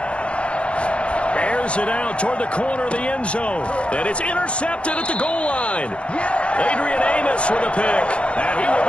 Airs it out toward the corner of the end zone. And it's intercepted at the goal line. Adrian Amos with a pick. And he will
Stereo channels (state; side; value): late; right; 0.060 ms